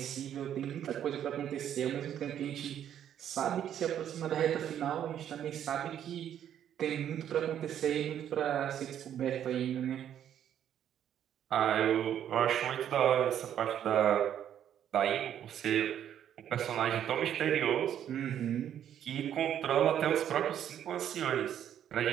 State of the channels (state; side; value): quieter; left; 10.1 dB